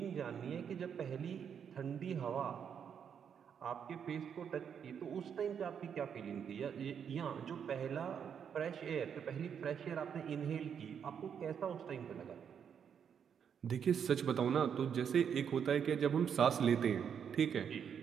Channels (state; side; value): quieter; left; 7.7 dB